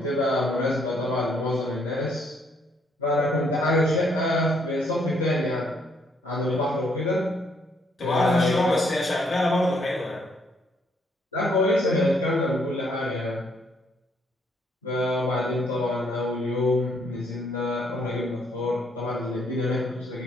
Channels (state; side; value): normal; both; correlation 0.70